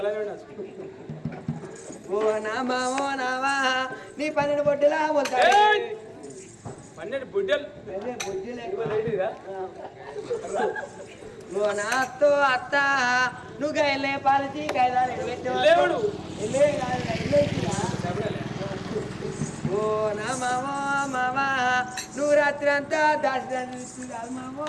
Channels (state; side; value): identical; both; correlation 1.00